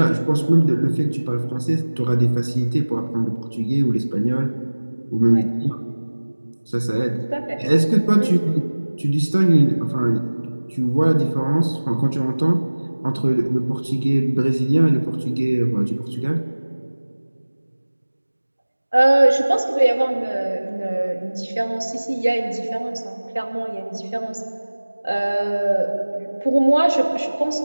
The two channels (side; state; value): both; inverted; correlation -1.00